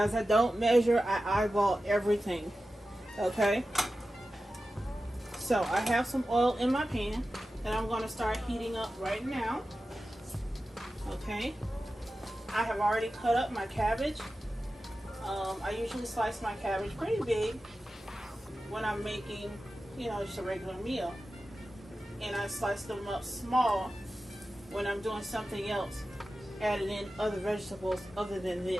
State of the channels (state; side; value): normal; both; correlation 0.93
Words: I don't measure, I eyeball everything. Okay? So I have some oil in my pan that I'm going to start heating up right now. Okay, I have already cut up my cabbage. I usually slice my cabbage pretty big when I'm making, just a regular meal, and I slice them up small when I'm doing something else, adding in other vegetables other than